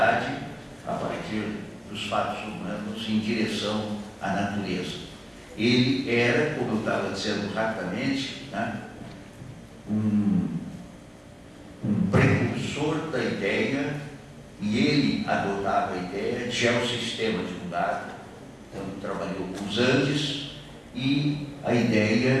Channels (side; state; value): both; identical; correlation 1.00